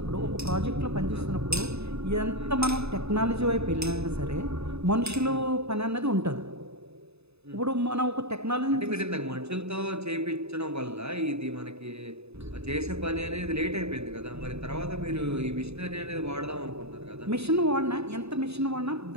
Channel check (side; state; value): left; late; 0.79 ms